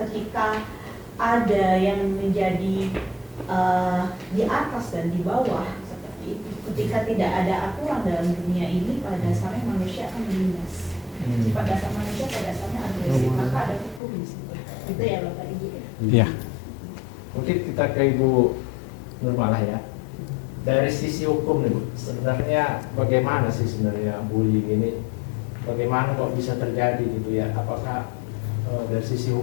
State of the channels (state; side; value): drops out; right; at 14.0 s